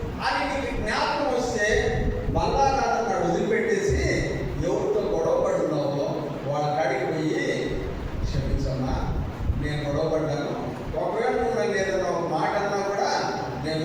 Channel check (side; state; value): both; identical; correlation 1.00